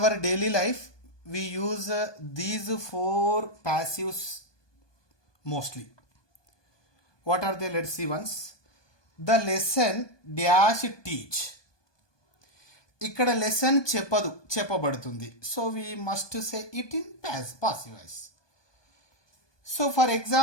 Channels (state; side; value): late; right; 1.2 ms